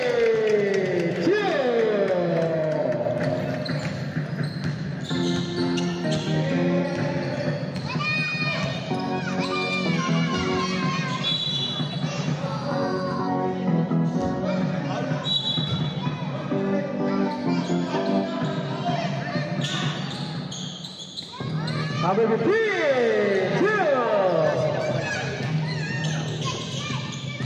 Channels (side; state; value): both; identical; correlation 1.00